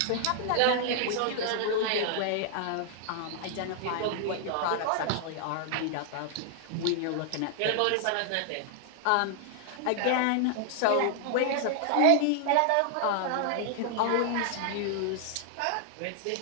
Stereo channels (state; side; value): different; both; correlation 0.00